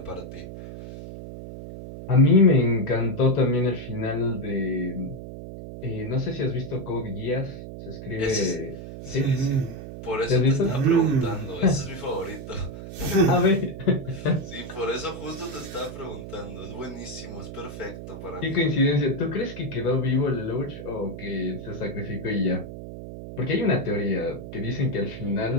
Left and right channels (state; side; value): noise; right; hum, 11 dB below the sound